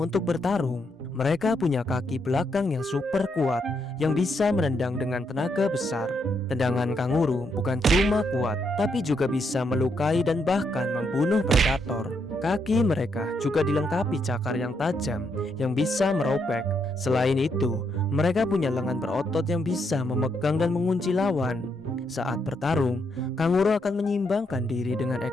bertarung. Mereka punya kaki belakang yang super kuat, yang bisa menendang dengan tenaga besar. Tendangan kanguru bukan cuma kuat, tapi juga bisa melukai dan bahkan membunuh predator. Kaki mereka juga dilengkapi cakar yang tajam yang bisa merobek. Selain itu, mereka punya lengan berotot yang bisa memegang dan mengunci lawan. Saat bertarung, kanguru akan menyimbangkan diri dengan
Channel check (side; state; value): both; normal; correlation 0.77